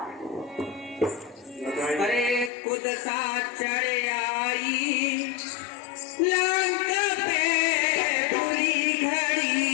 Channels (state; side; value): drops out; right; at 2.5 s